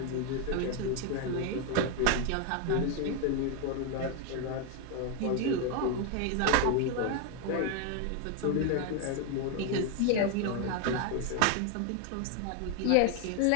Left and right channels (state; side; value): different; both; correlation 0.01